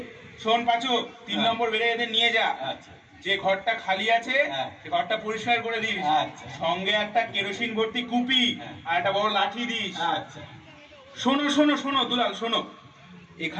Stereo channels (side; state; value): both; identical; correlation 1.00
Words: শোন পাঁচু, 3 নম্বর বেড়ে এদের নিয়ে যা। আচ্ছা যে ঘরটা খালি আছে হ্যাঁ। সে ঘরটা পরিষ্কার করে দিস। আচ্ছা। সঙ্গে একটা কেরোসিন ভর্তি কুপি হ্যাঁ। আর একটা বড় লাঠি দিস। আচ্ছা। শোনো শোনো শোনো দুলাল, শোনো,